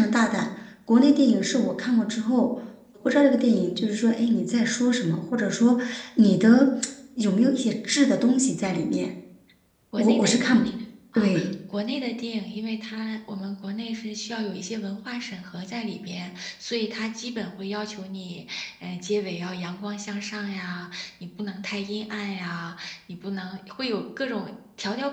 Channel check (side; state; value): both; identical; correlation 1.00